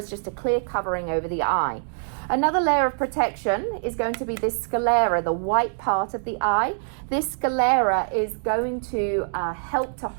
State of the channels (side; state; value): left; silent; digital silence